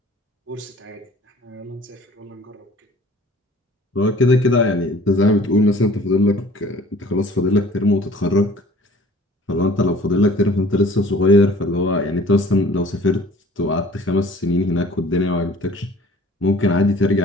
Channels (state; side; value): normal; both; correlation 0.50